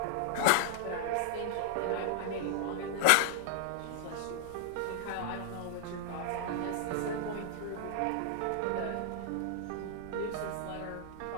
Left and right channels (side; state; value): both; different; correlation 0.00